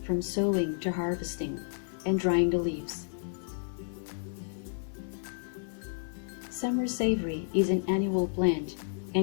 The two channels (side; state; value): right; silent; 57 dB below the other